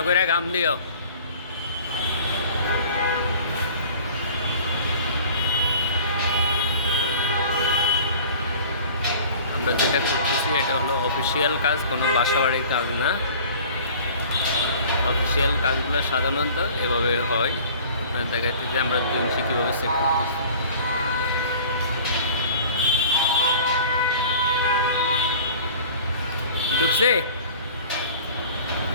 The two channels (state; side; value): inverted; both; correlation -0.45